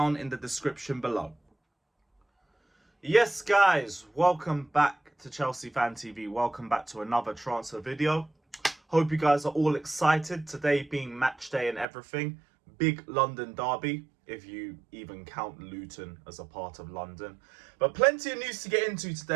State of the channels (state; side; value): drops out; left; at 11.9 s